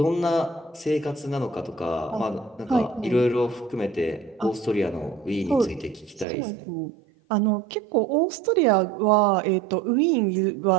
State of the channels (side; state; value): left; drops out; at 6.2 s